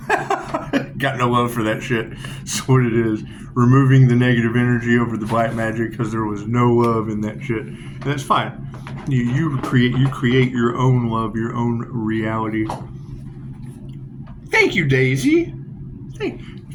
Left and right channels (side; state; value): both; identical; correlation 1.00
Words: Got no love for that shit. That's what it is. Removing the negative energy over the black magic because there was no love in that shit. And that's fine. You create your own love, your own reality. Thank you, Daisy.